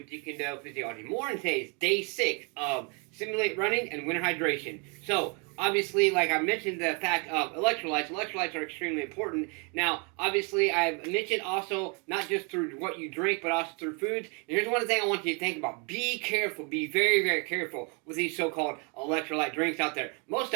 Kune Physiology. More on today's day 6 of simulate running and winter hydration. So obviously, like I mentioned, the fact of electrolytes. Electrolytes are extremely important. Now, obviously, I've mentioned also not just through what you drink, but also through foods. And here's one thing I want you to think about. Be careful. Be very, very careful with these so-called electrolyte drinks out there. Most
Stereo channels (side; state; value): left; quieter; 34.6 dB